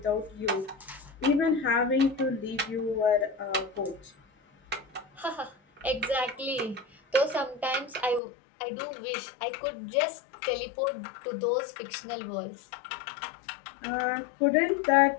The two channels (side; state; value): right; drops out; at 8.2 s